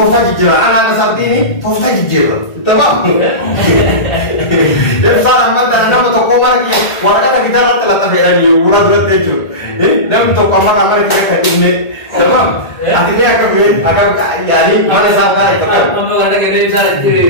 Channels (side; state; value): right; late; 1.8 ms